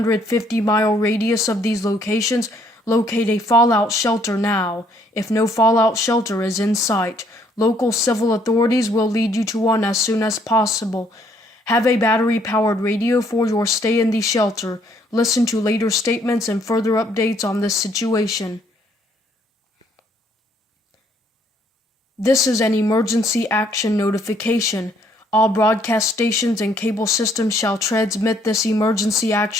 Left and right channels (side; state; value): both; normal; correlation 0.66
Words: radius of these locations, locate a fallout shelter now. If no fallout shelter is in sight, local civil authorities will lead you to one as soon as possible. Have a battery-powered radio for your stay in the shelter. Listen to later statements and further updates on this situation. This is an emergency action notification. All broadcast stations and cable systems shall transmit this emergency